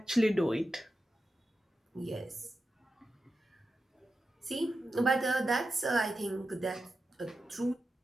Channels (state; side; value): normal; both; correlation 0.90